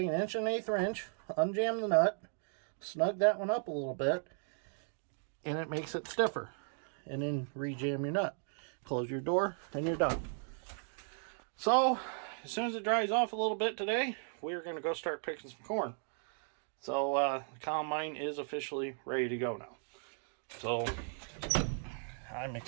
1 1/8 inch, unjam the nut, snug that one up a little bit, and it makes it stiffer. And then rejam your nut. Close your door, and you're done. So as soon as it dries off a little bit today, we're going to go start picking some corn. So the combine is officially ready to go now. So I'm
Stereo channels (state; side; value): silent; left; 54 dB below the other